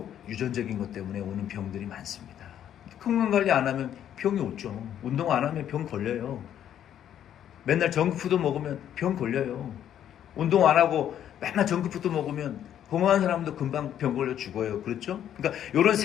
유전적인 것 때문에 오는 병들이 많습니다. 건강관리 안 하면 병이 오죠. 운동 안 하면 병 걸려요. 맨날 정크푸드 먹으면 병 걸려요. 운동 안 하고 맨날 정크푸드 먹으면 건강한 사람도 금방 병 걸려 죽어요. 그렇죠? 그러니까 이런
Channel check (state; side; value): quieter; right; 10.3 dB